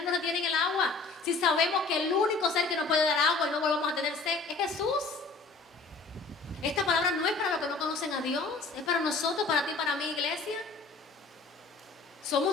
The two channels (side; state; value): right; quieter; 4.0 dB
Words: no retienen el agua? Si sabemos que el único ser que nos puede dar agua y no volvamos a tener sed es Jesús. Esta palabra no es para los que no conocen a Dios, es para nosotros, para ti, para mí, iglesia.